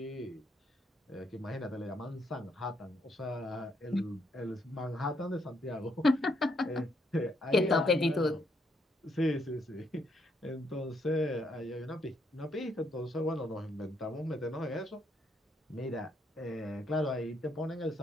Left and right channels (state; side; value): normal; both; correlation 0.74